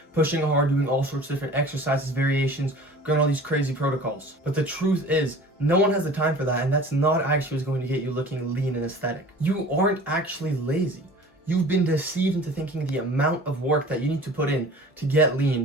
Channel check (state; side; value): normal; both; correlation 0.43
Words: pushing hard, doing all sorts of different exercises, variations, going all these crazy protocols. But the truth is, no one has the time for that, and that's not actually what's going to get you looking lean and aesthetic. You aren't actually lazy. You've been deceived into thinking the amount of work that you need to put in to get